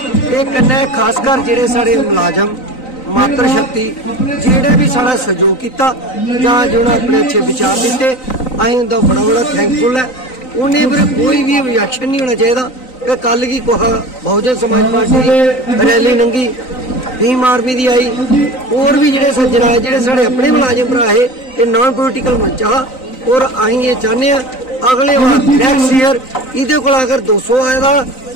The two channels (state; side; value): late; right; 3.9 ms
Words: ये कन्नै खासकर जेडे साढ़े मुलाजम मात्र शक्ति जेड़ा भी साड़ा सहयोग किया जो अपने अच्छे विचार दिते, अं उनका बड़ा बड़ा थैंकफुल है। उन्हें फिर कोई भी ऑब्जेक्शन नहीं होना चाहिए। कल की बहुजन समाज पार्टी रैली लंघी, भीम आर्मी की आई, और भी जोड़े सज्जन आए जोड़े साढ़े अपने मुलाजिम भरा है, ये नॉन पोलिटिकल मंच हा। और अं ये चाहते हैं अगले बार नैक्सट ईयर ये अगर 200 आएगा